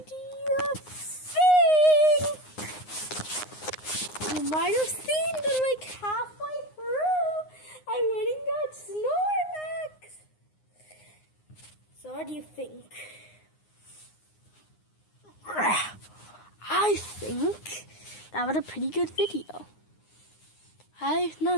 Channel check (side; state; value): right; late; 9.6 ms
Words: you think? You might have seen that like halfway through, I went and got Snorlax. So, what do you think? I think that was a pretty good video. Now